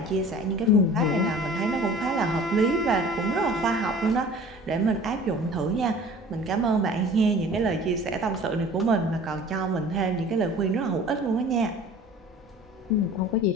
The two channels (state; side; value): normal; both; correlation 0.45